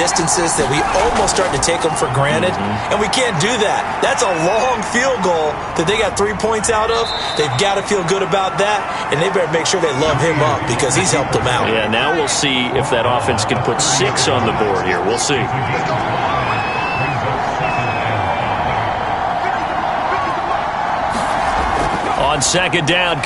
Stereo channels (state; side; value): identical; both; correlation 1.00